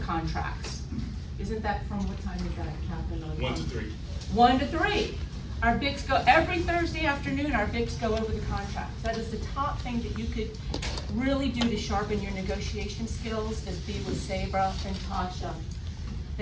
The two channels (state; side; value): identical; both; correlation 1.00